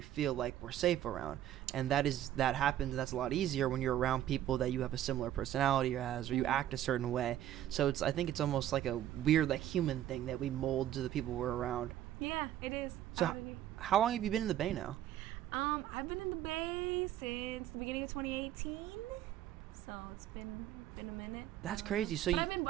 like we're safe around, and that happens, and that's a lot easier when you're around people that you have a similar personality as, or you act a certain way. So I think it's almost like a weird, like, human thing that we mold to the people we're around. Yeah, it is. So how long have you been in the Bay now? I've been in the Bay since the beginning of 2018, so it's been a minute. That's crazy. So but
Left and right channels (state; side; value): quieter; left; 12.2 dB